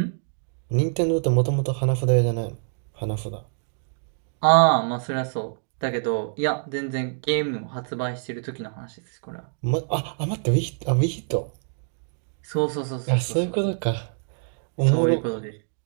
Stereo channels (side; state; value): left; silent; digital silence